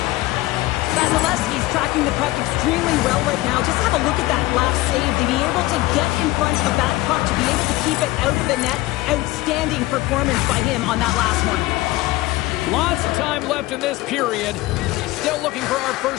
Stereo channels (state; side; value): quieter; right; 18.6 dB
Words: Vasilevsky's tracking the puck extremely well right now. Just have a look at that last save. To be able to get in front of that puck, to be able to keep it out of the net. Outstanding performance by him on that last one. Lots of time left in this period. Still looking for our